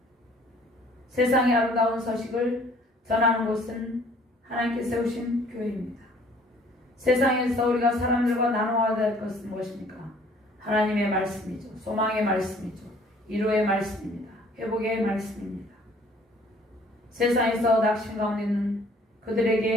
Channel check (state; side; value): normal; both; correlation 0.56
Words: 세상의 아름다운 소식을 전하는 곳은 하나님께 세우신 교회입니다. 세상에서 우리가 사람들과 나누어야 될 것은 무엇입니까? 하나님의 말씀이죠. 소망의 말씀이죠. 위로의 말씀입니다. 회복의 말씀입니다. 세상에서 낙심 가운데 있는